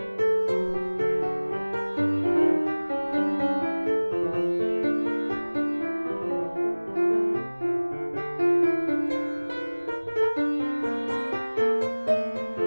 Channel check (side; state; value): both; inverted; correlation -1.00